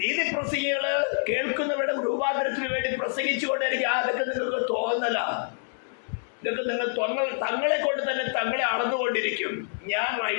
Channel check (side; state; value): right; silent; digital silence